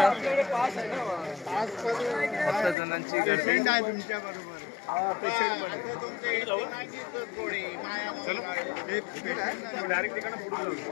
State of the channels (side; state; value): right; drops out; at 2.8 s